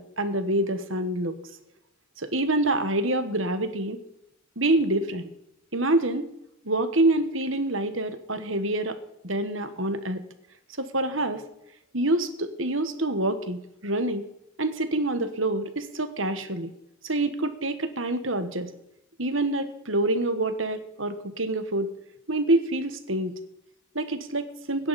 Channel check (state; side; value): normal; both; correlation 0.08